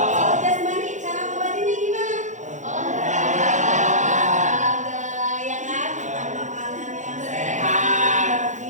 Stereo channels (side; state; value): left; late; 0.35 ms